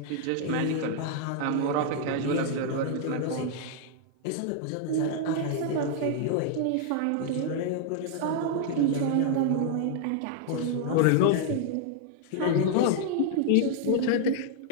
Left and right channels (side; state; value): both; different; correlation 0.00